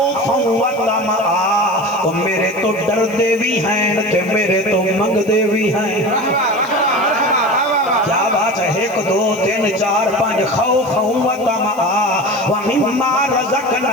و طمعا میرے تو ڈر دے بھی ہیں تے میرے تو منگ دے بھی ہیں کیا بات ہے 1 2 3 4 5 خوف و طمعا ومما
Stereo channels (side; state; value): right; noise; hiss, 23 dB below the sound